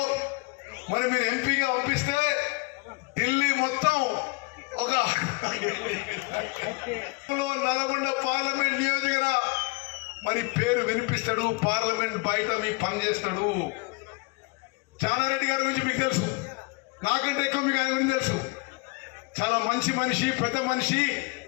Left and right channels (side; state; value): right; quieter; 28.3 dB